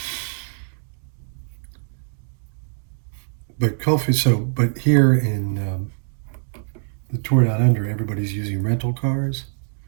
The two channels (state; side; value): silent; left; 62 dB below the other